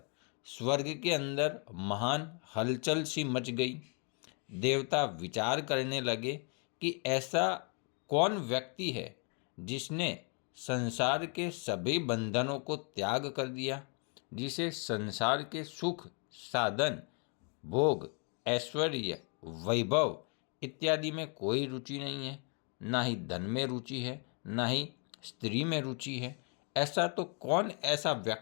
स्वर्ग के अंदर महान हलचल सी मच गई। देवता विचार करने लगे कि ऐसा कौन व्यक्ति है जिसने संसार के सभी बंधनों को त्याग कर दिया, जिसे संसार के सुख, साधन, भोग, ऐश्वर्य, वैभव इत्यादि में कोई रुचि नहीं है, ना ही धन में रुचि है, ना ही स्त्री में रुचि है। ऐसा तो कौन ऐसा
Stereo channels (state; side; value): quieter; right; 38.2 dB